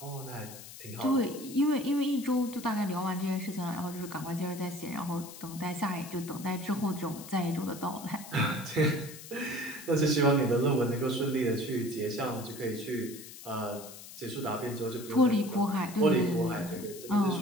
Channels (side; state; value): left; noise; hiss, 15 dB below the sound